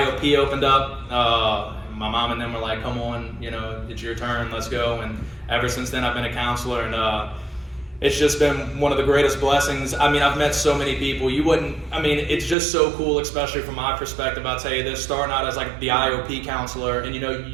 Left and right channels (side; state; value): left; drops out; at 12.6 s